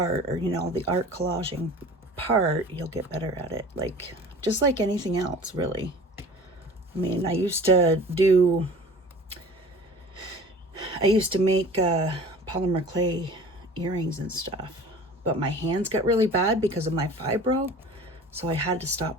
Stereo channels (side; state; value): both; normal; correlation 0.43